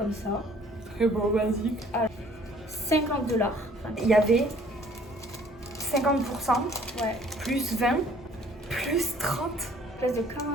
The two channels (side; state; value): both; normal; correlation 0.57